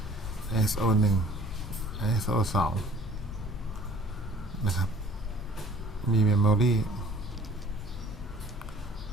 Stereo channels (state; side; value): normal; both; correlation 0.52